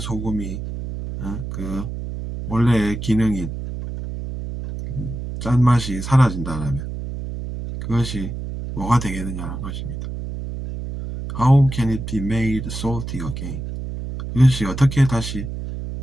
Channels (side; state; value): right; noise; hum, 7 dB below the sound